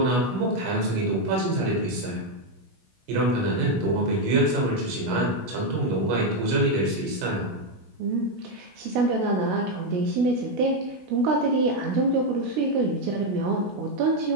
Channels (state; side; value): late; left; 16 ms